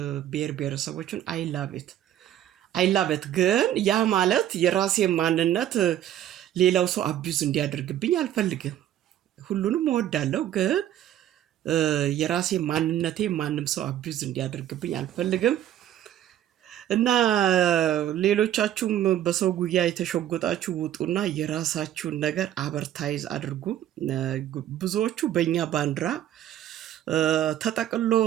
ብሔር ብሔረሰቦችን አይላበት ግን ያ ማለት የራሴ ማንነት ሌላው ሰው አቢዩዝ እንዲያደርግብኝ አልፈልግም። ሁሉንም እወዳለሁ፣ ግን የራሴ ማንነቴ ማንም ሰው አቢዩዝ እንዲያደርግብኝ አልፈልግም። እና ሌሎቻችሁም በሰው ጉያ የተሸጎጣችሁ ውጡና የራሳችሁን ነገር አበርታይዝ አድርጉ። ብዙዎቹ በእኛ ባንዲራ ተጠቅሎ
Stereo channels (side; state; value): left; quieter; 11.7 dB